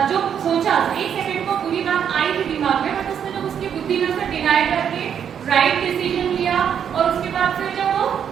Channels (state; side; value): quieter; left; 8.3 dB